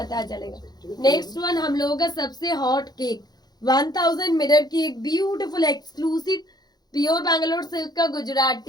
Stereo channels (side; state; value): right; late; 0.19 ms